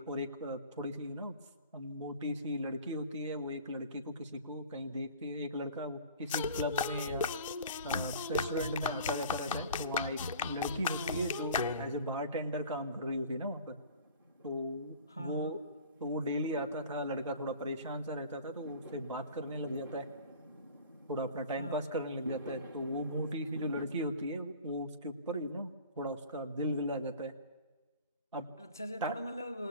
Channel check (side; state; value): both; inverted; correlation -0.43